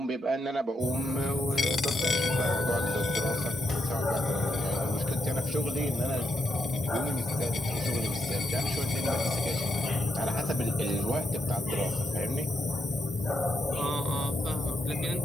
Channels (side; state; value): both; normal; correlation 0.81